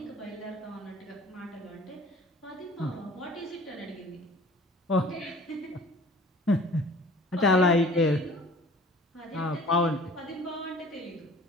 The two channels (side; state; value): both; normal; correlation 0.48